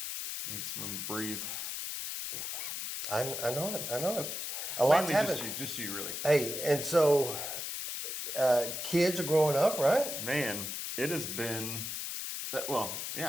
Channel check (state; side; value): noise; left; hiss, 4 dB below the sound